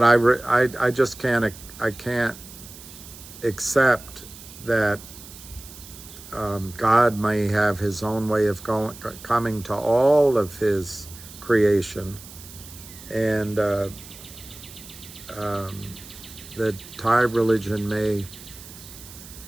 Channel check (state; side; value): noise; right; hiss, 17 dB below the sound